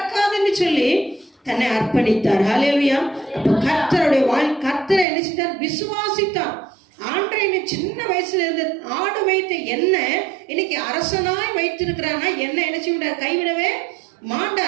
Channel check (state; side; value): drops out; left; at 5.1 s